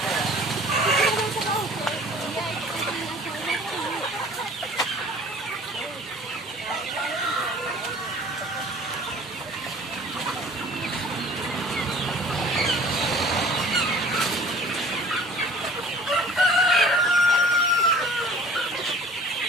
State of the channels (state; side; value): normal; both; correlation 0.48